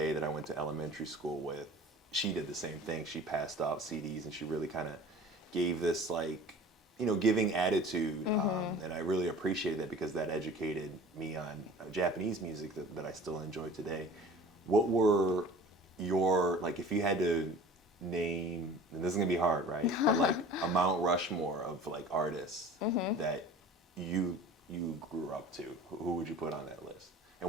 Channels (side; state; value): both; normal; correlation 0.42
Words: that I went to elementary school with, she did the same thing. She passed out CDs and she really kind of gave this like, giving attitude. And I really appreciated that because that educated me on Japanese music that I still enjoy today. What were your, like, if you had to name, and this is gonna be hard, right? But like a Mount Rushmore of like artists that you grew up to, who would you put on that list? And